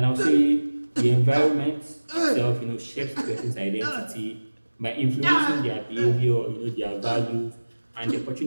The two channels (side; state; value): both; inverted; correlation -1.00